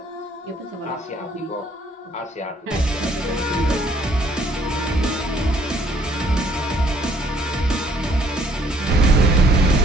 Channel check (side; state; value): both; normal; correlation 0.63